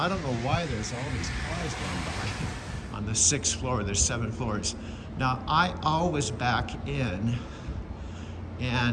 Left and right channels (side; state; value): both; identical; correlation 1.00